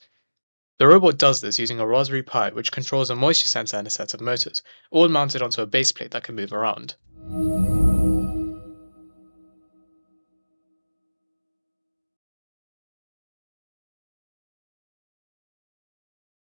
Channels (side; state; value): both; inverted; correlation -1.00